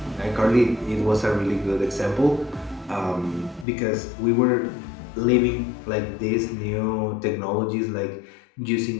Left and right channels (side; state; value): right; drops out; at 3.7 s